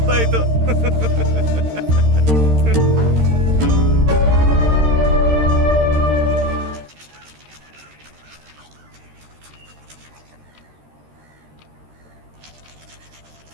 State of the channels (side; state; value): left; late; 13 ms